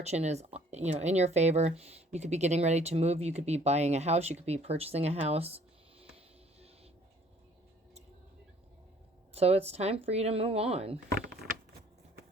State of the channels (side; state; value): both; normal; correlation 0.57